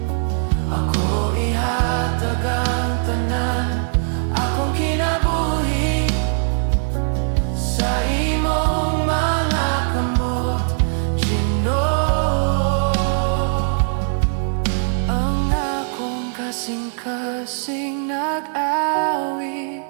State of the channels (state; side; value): silent; left; 65 dB below the other